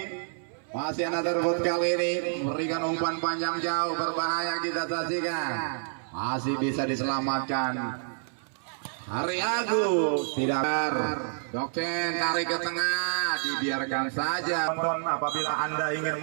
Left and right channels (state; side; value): silent; left; 59 dB below the other